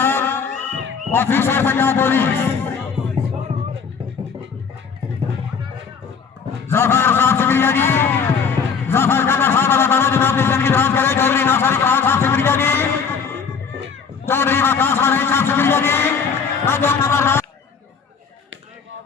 ऑफिसर पंजाब पुलिस जफर साहब शुक्रिया जी जफर का साहब अल्लाह ताला जनाब की जिंदगी दराज करे चौधरी नासर खान साहब शुक्रिया जी चौधरी वकास वाले साहब शुक्रिया जी नजम नंबर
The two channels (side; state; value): right; quieter; 6.1 dB